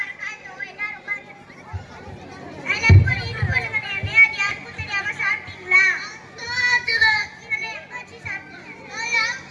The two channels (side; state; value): both; identical; correlation 1.00